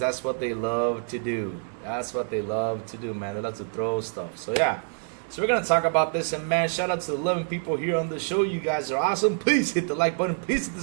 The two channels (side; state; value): left; silent; 61 dB below the other